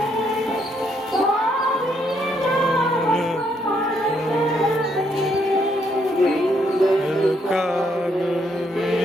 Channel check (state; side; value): normal; both; correlation 0.73